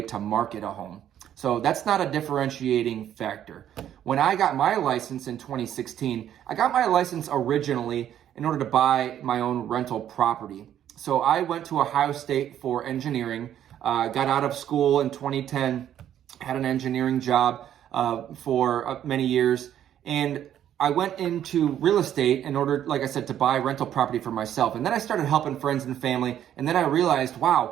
to market a home. So that's not a differentiating factor. When I got my license in 2016, I got my license originally in order to buy my own rental property. So I went to Ohio State for engineering, got out of school in 2010, had an engineering job for many years, and I went into real estate in order, like I said, to buy rental property for myself. And then I started helping friends and family, and then I realized,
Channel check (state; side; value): quieter; left; 10.6 dB